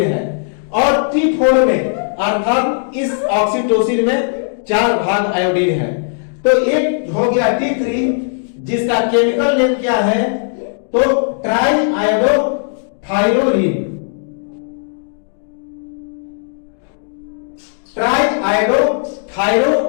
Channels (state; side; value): silent; right; digital silence